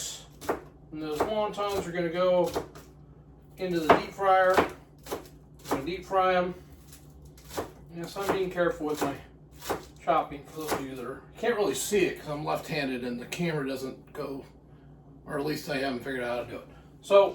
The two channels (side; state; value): both; identical; correlation 1.00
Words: and those wontons are going to go into the deep fryer. I'm going to deep fry them. Yes, I'm being careful with my chopping for those of you that can't really see it because I'm left-handed and the camera doesn't go, or at least I haven't figured out how to do it.